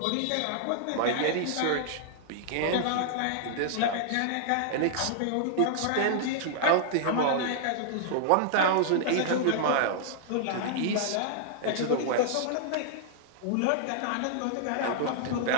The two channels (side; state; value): both; different; correlation -0.01